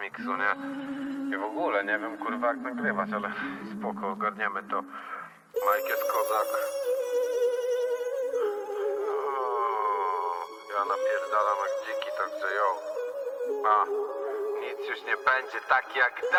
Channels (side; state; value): both; identical; correlation 1.00